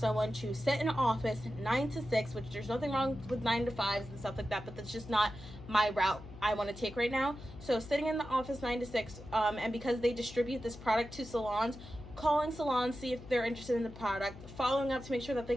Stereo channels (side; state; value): left; noise; hum, 15 dB below the sound